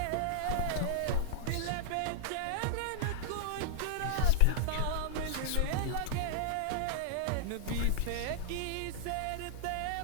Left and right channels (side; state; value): both; different; correlation -0.01